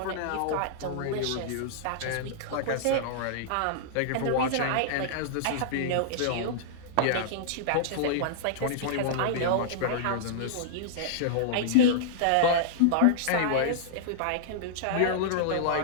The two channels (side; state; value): both; different; correlation -0.02